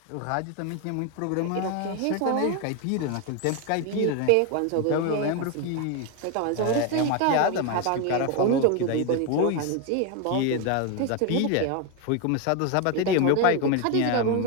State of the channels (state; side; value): different; both; correlation 0.01